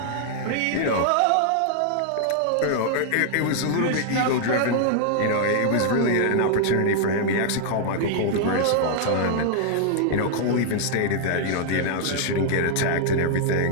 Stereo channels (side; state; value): both; different; correlation -0.01